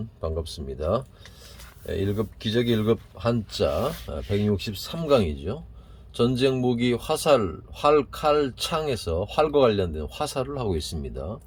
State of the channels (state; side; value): identical; both; correlation 1.00